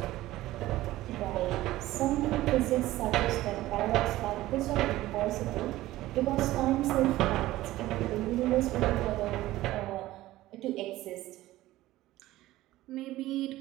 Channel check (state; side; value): quieter; left; 16.3 dB